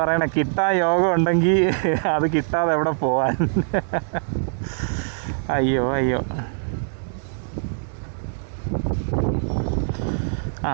പറയണേ, കിട്ടാൻ യോഗം ഉണ്ടെങ്കിൽ അത് കിട്ടാതെ എവിടെ പോവാൻ. അയ്യോ അയ്യോ.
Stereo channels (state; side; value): silent; left; digital silence